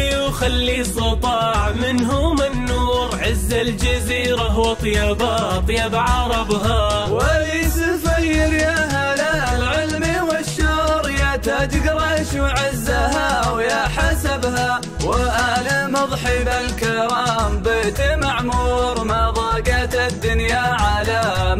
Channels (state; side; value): identical; both; correlation 1.00